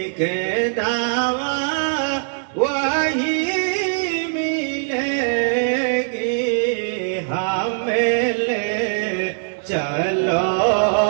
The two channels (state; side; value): silent; left; digital silence